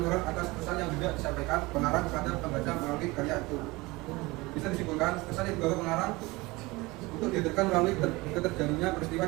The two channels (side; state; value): left; quieter; 22.4 dB